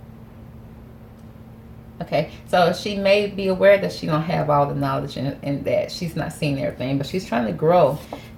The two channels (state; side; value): identical; both; correlation 1.00